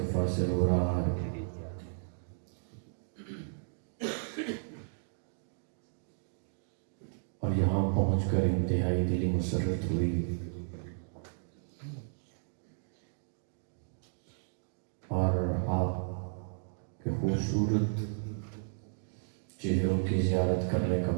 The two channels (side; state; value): left; silent; digital silence